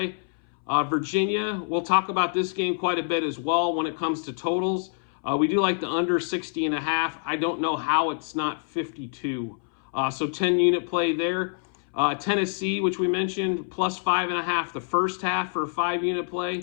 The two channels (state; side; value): silent; right; 61 dB below the other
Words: Virginia, we'll talk about this game quite a bit as well when it comes to totals. We do like the under 60.5. I don't know how it's not 52. So 10-unit play there. Tennessee, which we mentioned, plus 5.5 the first half for a 5-unit